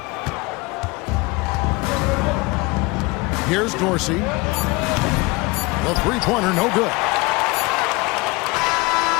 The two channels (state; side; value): quieter; right; 24.6 dB